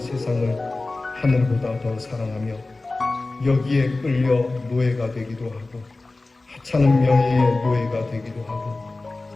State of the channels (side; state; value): right; quieter; 3.2 dB